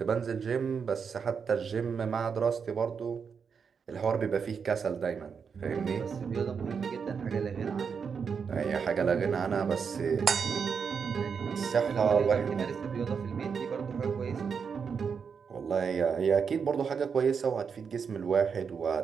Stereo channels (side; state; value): left; quieter; 6.2 dB